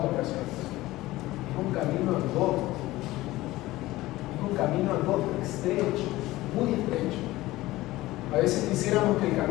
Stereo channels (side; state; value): right; quieter; 17.7 dB